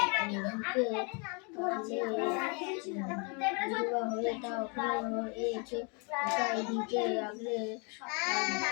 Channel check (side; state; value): right; quieter; 34.4 dB